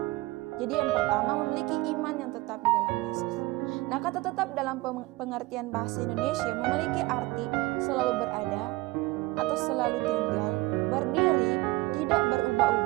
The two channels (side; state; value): left; quieter; 20.9 dB